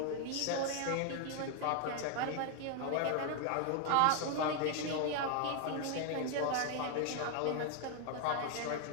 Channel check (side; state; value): both; different; correlation 0.00